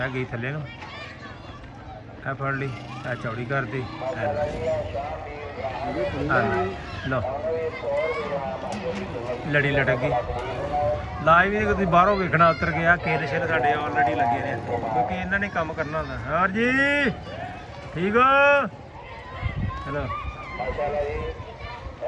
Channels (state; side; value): identical; both; correlation 1.00